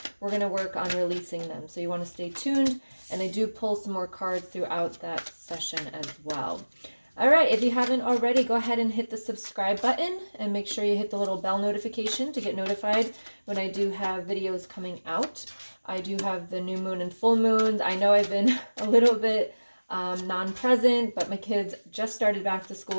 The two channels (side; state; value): both; inverted; correlation -1.00